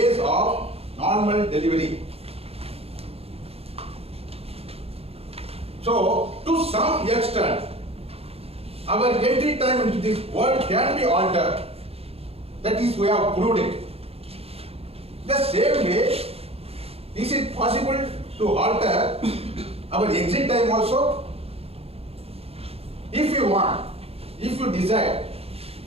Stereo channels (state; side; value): late; left; 0.29 ms